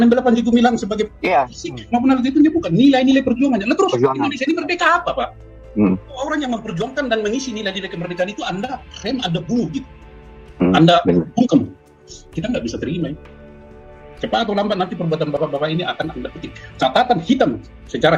membela Panji Gumilang sebagai fisik maupun hal itu bukan nilai-nilai perjuangannya. Lalu terus Indonesia ini merdeka apa, Pak? Orang yang memperjuangkan dan mengisi nilai-nilai kemerdekaan itu Anda rem, Anda bunuh gitu. Anda bungkam. Kita nggak bisa terima ya. Cepat atau lambat nanti perbuatan bapak-bapak ini akan Anda petik. Catatan hitam,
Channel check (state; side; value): identical; both; correlation 1.00